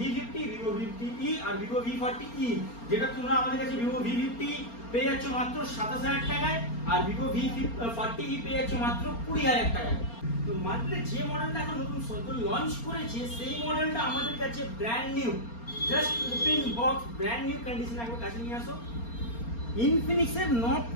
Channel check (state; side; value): late; right; 4.3 ms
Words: ভিভো V50e আর ভিভো V40e, যেটা তোমরা আমাদের কাছে ভিভো V50 পেয়ে যাচ্ছ মাত্র 27,000 টাকায় আর ভিভো V40e পেয়ে যাচ্ছ মাত্র 20,000 টাকায়। তো মার্কেটে যে মডেলটা এখন নতুন লঞ্চ করেছে সেই মডেলটা আমাদের কাছে brand new, just open box, brand new কন্ডিশনে একবার কাছে নিয়ে আসো। ইনফিনিক্সের নোট